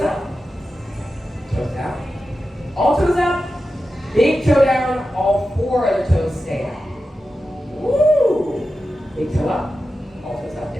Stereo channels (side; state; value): both; normal; correlation 0.92